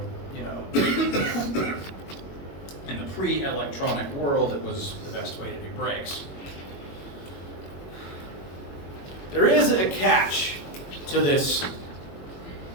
you know, in the pre-electronic world, it was the best way to do brakes. There is a catch to this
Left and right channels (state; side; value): late; right; 21 ms